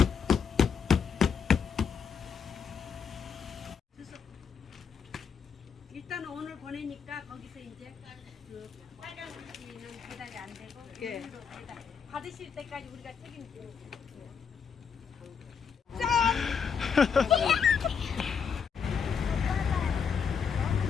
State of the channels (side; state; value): right; quieter; 6.6 dB